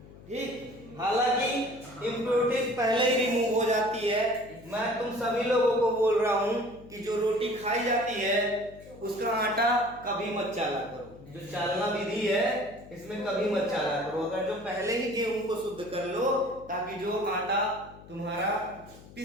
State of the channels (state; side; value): noise; left; hum, 20 dB below the sound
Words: ठीक, हालांकि इम्प्योरिटीज पहले ही रिमूव हो जाती है। मैं तुम सभी लोगों को बोल रहा हूं कि जो रोटी खाई जाती है उसका आटा कभी मत चाला करो, जो चालना विधि है इसमें कभी मत चाला करो। अगर जो पहले ही गेहूं को शुद्ध कर लो, ताकि जो आटा तुम्हारा